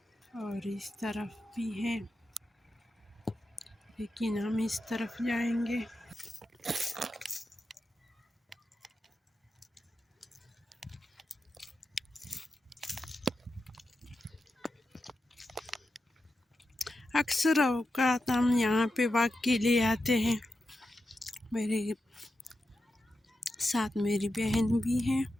और इस तरफ भी है, लेकिन हम इस तरफ जाएंगे। अक्सर औकात हम यहाँ पे वॉक के लिए आते हैं। मेरे साथ मेरी बहन भी है।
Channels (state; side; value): normal; both; correlation 0.89